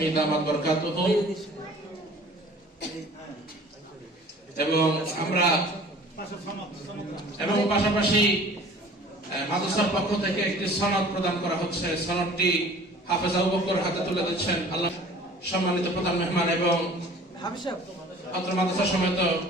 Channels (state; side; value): normal; both; correlation 0.48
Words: দামাত বরকাতুহু। এবং পাশাপাশি মাদ্রাসার পক্ষ থেকে একটি সনদ প্রদান করা হচ্ছে। সনদটি হাফেজ আবু বকর হাতে তুলে দিচ্ছেন আল্লাহ সম্মানিত প্রধান মেহমান এবং অত্র মাদ্রাসা সমেত